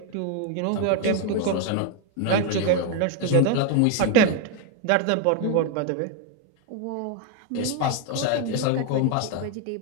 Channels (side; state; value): both; different; correlation 0.01